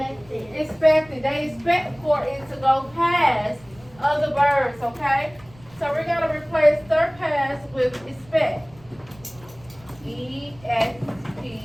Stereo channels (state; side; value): noise; right; rumble, 25 dB below the sound